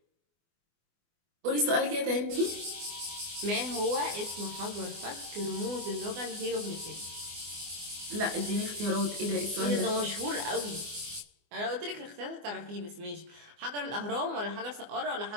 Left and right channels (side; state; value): left; late; 24 ms